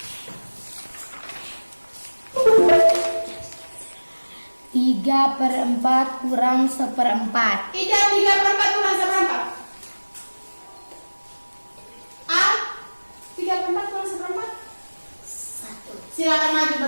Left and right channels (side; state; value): both; inverted; correlation -1.00